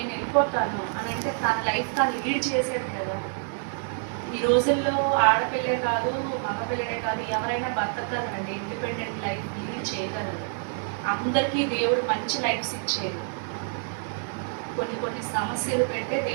వెళ్ళిపోతాను అని అంటే తన లైఫ్ తను లీడ్ చేసేది కదా. ఈ రోజుల్లో ఆడపిల్లే కాదు మగపిల్లడే కాదు ఎవరైనా బతకగలరండి. ఇండిపెండెంట్ లైఫ్ లీడ్ చేయగలరు. అందరికీ దేవుడు మంచి లైఫ్స్ ఇచ్చేది. కొన్ని సమస్యలు పెడితే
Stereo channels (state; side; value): silent; left; 60 dB below the other